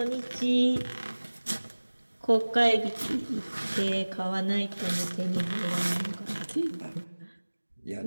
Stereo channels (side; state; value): both; inverted; correlation -1.00